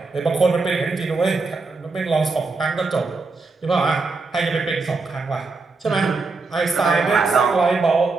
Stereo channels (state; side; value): quieter; left; 3.9 dB